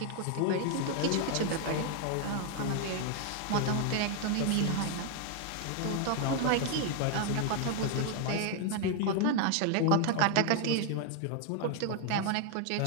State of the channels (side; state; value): both; different; correlation 0.00